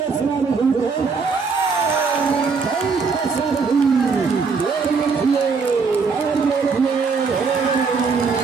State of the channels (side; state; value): left; quieter; 5.0 dB